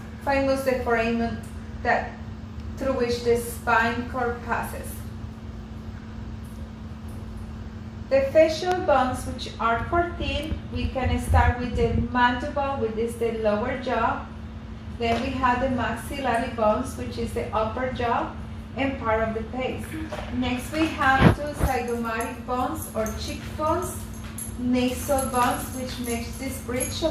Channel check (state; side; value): identical; both; correlation 1.00